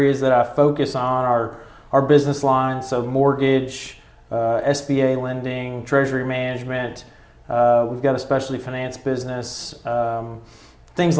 that I focus on are our business lines, so mortgage, SBA lending, treasury management. We've got a specialty finance business, things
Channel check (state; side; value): identical; both; correlation 1.00